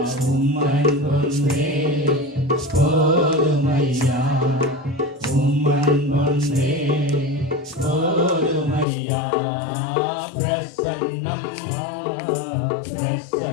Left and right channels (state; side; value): drops out; right; at 8.8 s